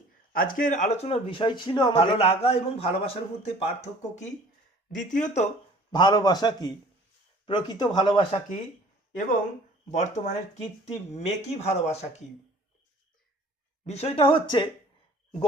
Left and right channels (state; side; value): normal; both; correlation 0.50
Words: আজকের আলোচনার বিষয় ছিল ভালো লাগা এবং ভালোবাসার মধ্যে পার্থক্য কি, দ্বিতীয়ত ভালোবাসা কি, প্রকৃত ভালোবাসা কি, এবং বর্তমানের কীর্তি মেকি ভালোবাসা কি। বিষয়টা হচ্ছে,